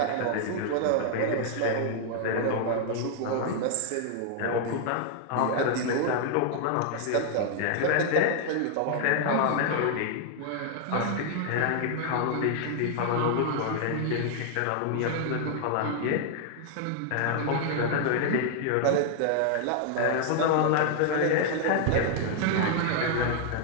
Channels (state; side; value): different; both; correlation 0.00